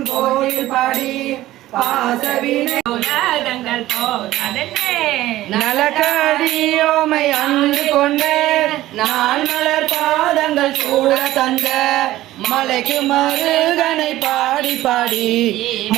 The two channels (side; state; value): left; quieter; 15.5 dB